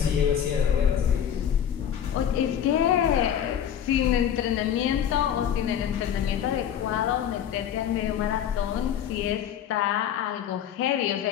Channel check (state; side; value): quieter; right; 9.4 dB